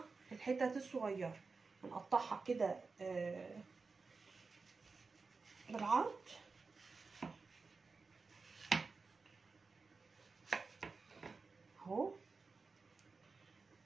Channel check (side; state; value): left; quieter; 4.3 dB